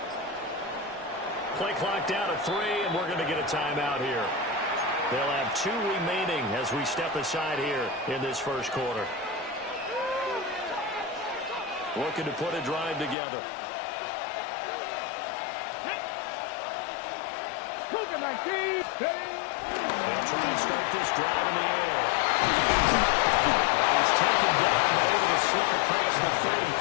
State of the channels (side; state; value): right; drops out; at 13.2 s